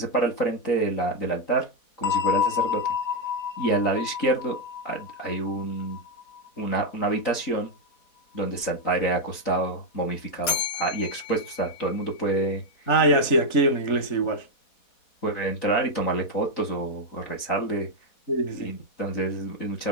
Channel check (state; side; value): late; right; 4.1 ms